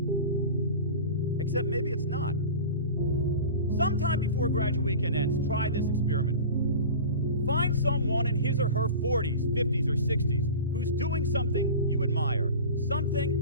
Except maybe it's not. Sometime before graduate weekend ends, try this experiment for me. Find someone in his or her 40s, 50s, or 60s who's doing something you admire, something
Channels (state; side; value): inverted; both; correlation -0.34